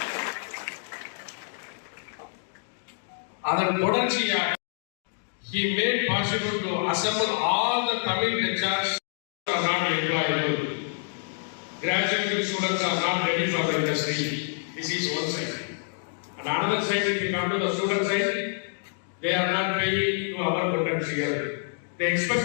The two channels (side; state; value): right; silent; digital silence